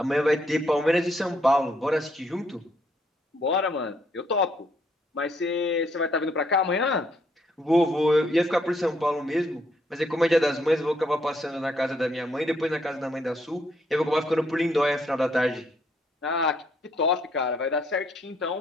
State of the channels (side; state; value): both; normal; correlation 0.71